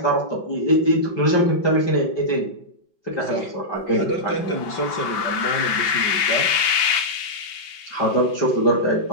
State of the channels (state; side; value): late; right; 5.3 ms